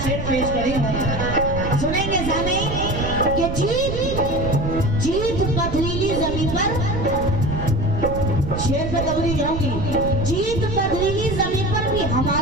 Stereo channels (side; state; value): right; noise; rumble, 5 dB below the sound